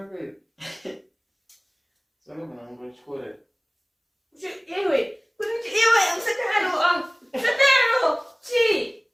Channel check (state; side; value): identical; both; correlation 1.00